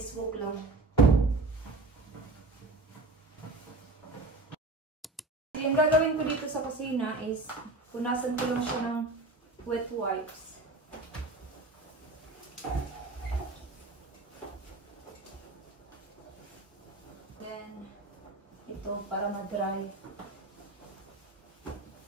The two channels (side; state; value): left; quieter; 3.1 dB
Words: walk lang. Yung gagawin ko dito sa kusina is, punasan ko lang siya ng wet wipes. Then, ito para ma-dry.